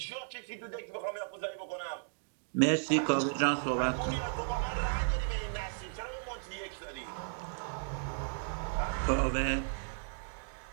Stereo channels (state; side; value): silent; left; digital silence